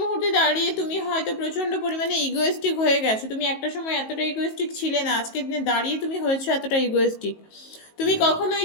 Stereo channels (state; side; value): late; right; 19 ms